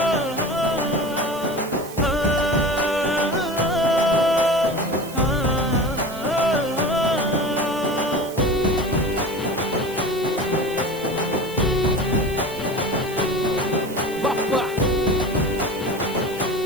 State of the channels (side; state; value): right; noise; hiss, 16 dB below the sound